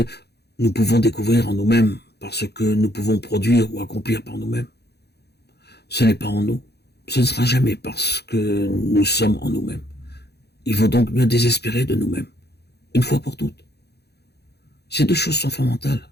nous pouvons découvrir en nous-mêmes par ce que nous pouvons produire ou accomplir par nous-mêmes. Ce n'est pas en nous. Ce ne sera jamais parce que nous sommes en nous-mêmes. Il vaut donc mieux désespérer de nous-mêmes, une fois pour toutes. Ces deux choses sont fondamentales.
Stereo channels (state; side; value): late; right; 0.48 ms